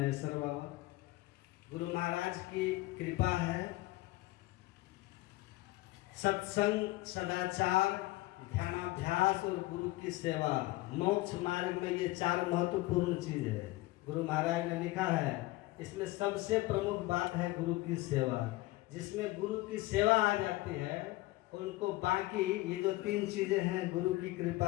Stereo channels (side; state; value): right; quieter; 19.4 dB